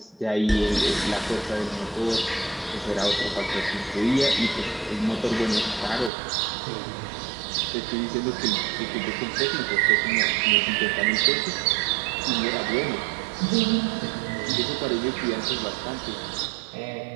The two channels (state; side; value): drops out; left; at 6.1 s